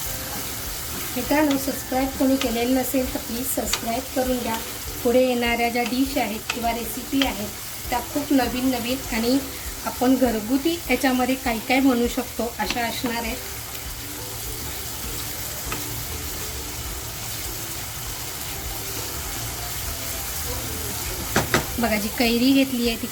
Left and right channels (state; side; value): identical; both; correlation 1.00